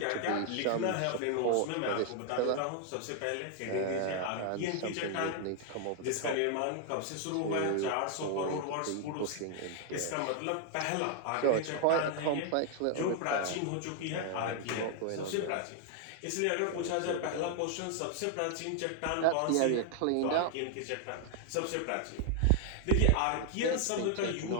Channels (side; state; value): both; different; correlation 0.00